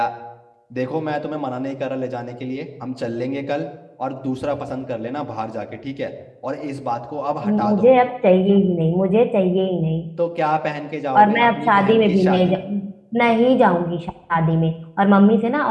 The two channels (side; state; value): both; identical; correlation 1.00